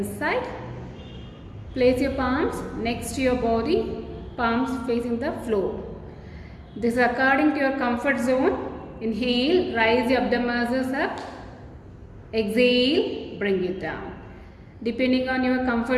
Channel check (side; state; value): both; identical; correlation 1.00